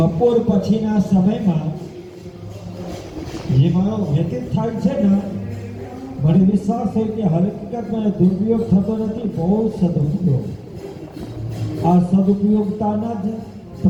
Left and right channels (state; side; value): identical; both; correlation 1.00